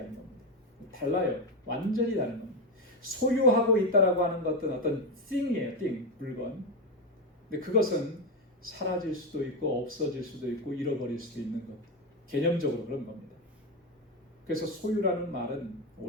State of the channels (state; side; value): normal; both; correlation 0.11